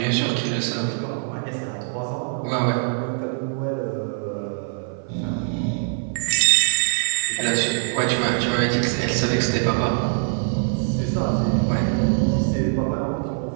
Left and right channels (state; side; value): silent; left; 56 dB below the other